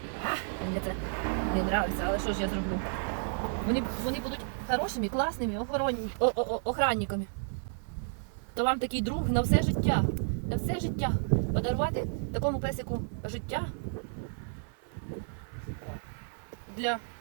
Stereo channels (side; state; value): left; silent; 57 dB below the other